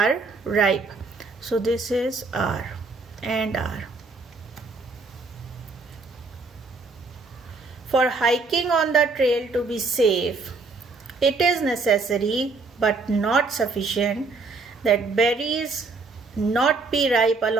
ripe. So this is R and R. For hiking on the trail to be safe, it is necessary but not sufficient that berries not be ripe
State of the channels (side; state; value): left; quieter; 3.9 dB